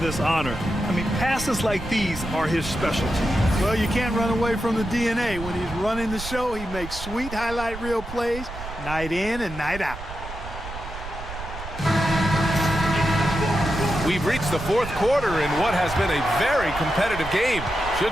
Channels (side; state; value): right; noise; rumble, 11 dB below the sound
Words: honor. I mean, passes like these are his specialty. Well, you can't run away from the DNA. When he's running the show, he makes sweet highlight reel plays night in and night out. We've reached the fourth quarter in what has been a very competitive game.